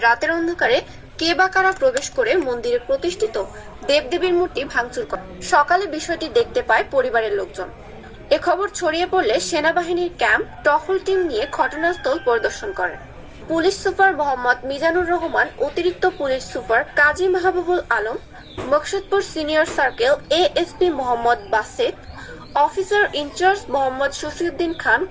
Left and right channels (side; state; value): both; identical; correlation 1.00